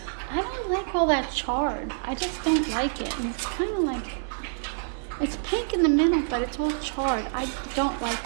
I don't like all that charred. I just don't like it. And it's kind of like, it's pink in the middle, but it's all charred. I don't like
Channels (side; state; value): left; silent; 60 dB below the other